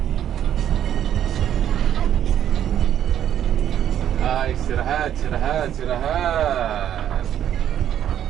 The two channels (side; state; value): left; quieter; 10.4 dB